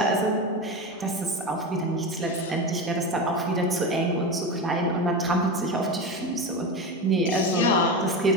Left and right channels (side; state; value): both; normal; correlation 0.21